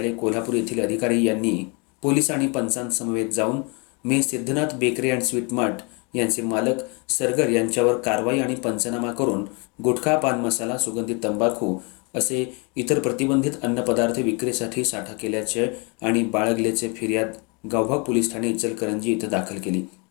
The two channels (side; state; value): right; quieter; 31.9 dB